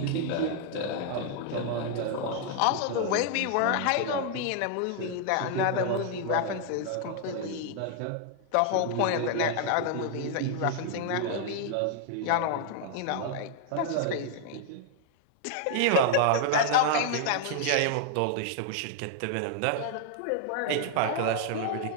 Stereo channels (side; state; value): both; different; correlation 0.00